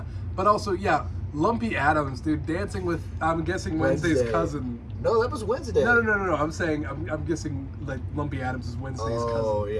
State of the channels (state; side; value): identical; both; correlation 1.00